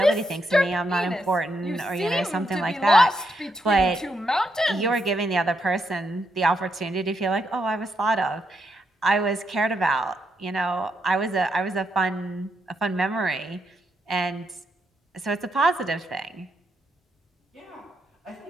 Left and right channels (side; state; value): both; normal; correlation 0.80